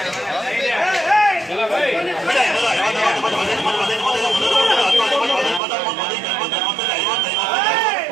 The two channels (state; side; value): drops out; left; at 5.6 s